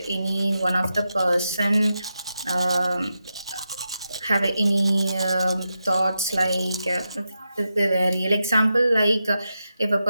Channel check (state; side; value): inverted; both; correlation -0.88